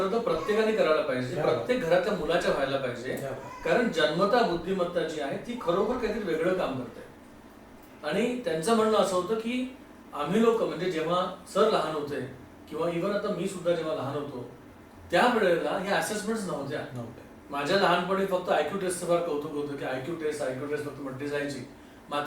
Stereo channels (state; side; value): identical; both; correlation 1.00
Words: तर प्रत्येकाने करायला पाहिजे, प्रत्येक घरातल्या मुलाच्या व्हायला पाहिजे, कारण जन्मता बुद्धिमत्ता जी आहे ती खरोखर काहीतरी वेगळं काम करते. आणि त्यांचं म्हणणं असं होतं की आम्ही लोक म्हणजे जेव्हा सर लहान होते किंवा इव्हन आता मी सुद्धा जेव्हा लहान होतो त्यावेळेला ह्या असेसमेंट्स नव्हत्या. माझ्या लहानपणी फक्त आयक्यू टेस्टचं फार कौतुक होतं की आयक्यू टेस्ट फक्त म्हटली जायची.